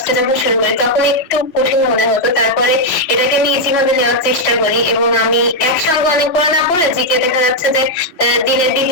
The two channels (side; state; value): right; late; 3.0 ms